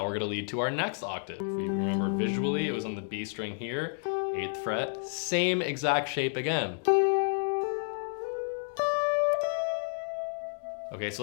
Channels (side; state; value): right; silent; digital silence